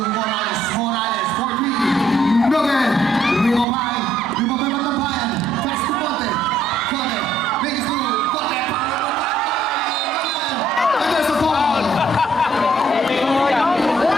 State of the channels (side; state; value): both; normal; correlation 0.66